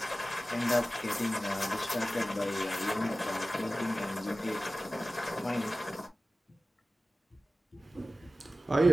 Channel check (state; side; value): normal; both; correlation 0.95